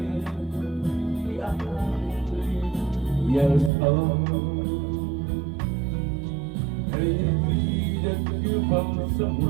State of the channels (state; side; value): drops out; left; at 3.7 s